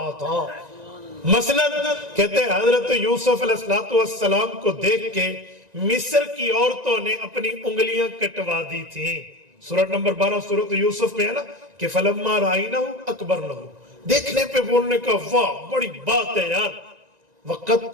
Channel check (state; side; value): late; left; 1.9 ms